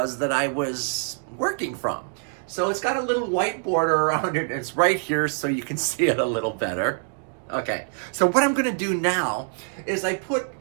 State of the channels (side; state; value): left; silent; 62 dB below the other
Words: that I was working from. So it's got a little white border around it, it's right here so you can see it a little better. Okay, so what I'm gonna do now is I